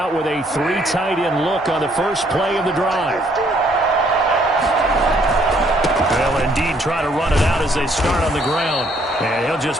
with a 3 tight end look on the first play of the drive. They'll indeed try to run it out as they start on the ground. And he'll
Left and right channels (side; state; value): both; normal; correlation 0.66